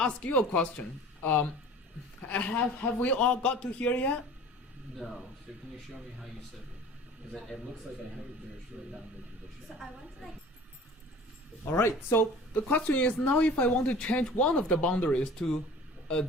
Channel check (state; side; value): normal; both; correlation 0.43